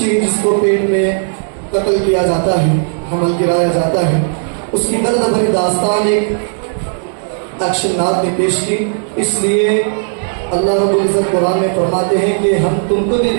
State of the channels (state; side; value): silent; left; digital silence